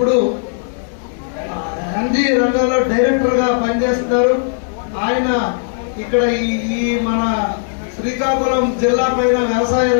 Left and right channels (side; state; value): right; silent; digital silence